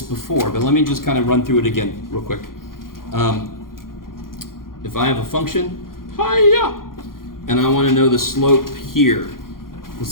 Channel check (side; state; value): right; late; 0.91 ms